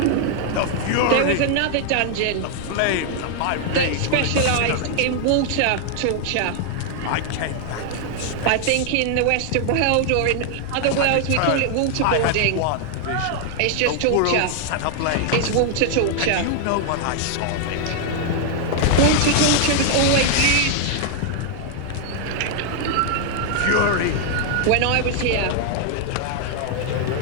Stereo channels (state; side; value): different; both; correlation 0.00